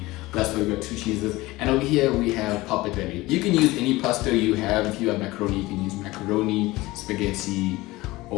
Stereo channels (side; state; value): right; quieter; 19.8 dB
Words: That's why we got 2 cheeses. And over here we have pappardelle. You can use any pasta you have. If you have macaroni, you can use macaroni, spaghetti,